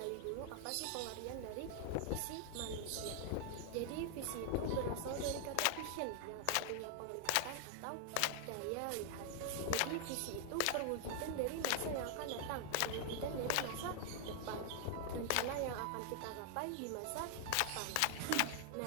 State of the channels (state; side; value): different; both; correlation 0.00